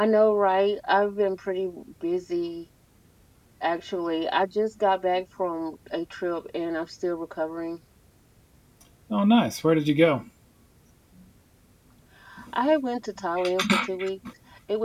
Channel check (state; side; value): identical; both; correlation 1.00